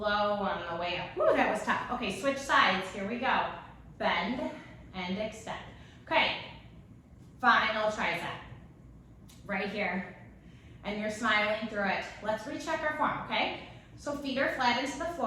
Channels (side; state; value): both; identical; correlation 1.00